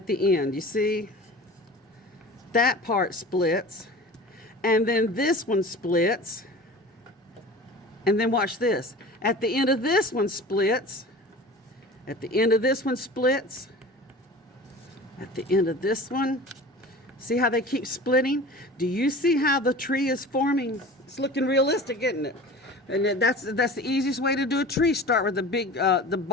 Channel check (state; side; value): normal; both; correlation 0.38